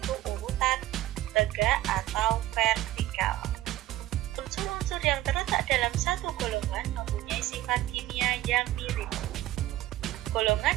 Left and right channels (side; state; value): left; quieter; 15.2 dB